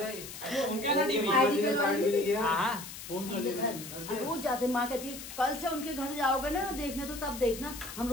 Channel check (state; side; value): noise; left; hiss, 11 dB below the sound